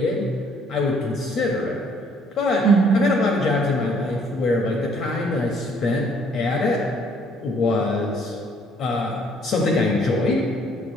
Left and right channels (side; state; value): both; normal; correlation 0.63